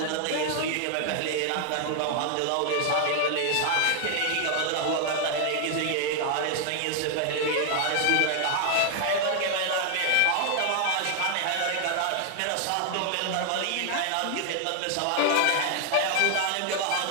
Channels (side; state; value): both; different; correlation 0.00